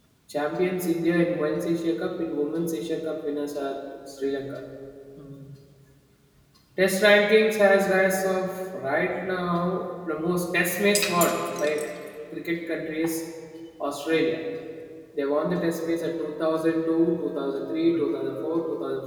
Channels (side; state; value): both; identical; correlation 1.00